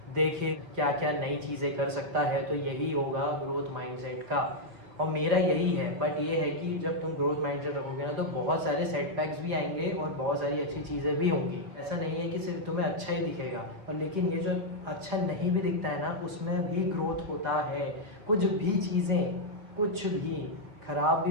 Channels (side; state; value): left; late; 4.7 ms